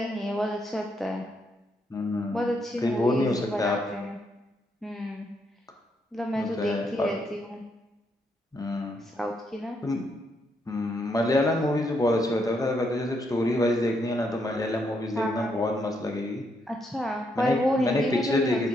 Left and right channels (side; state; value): both; normal; correlation 0.77